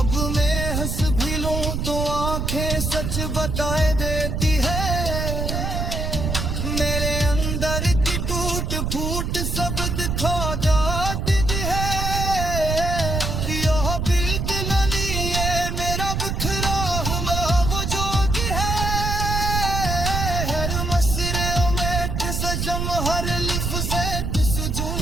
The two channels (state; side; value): noise; right; rumble, 1 dB below the sound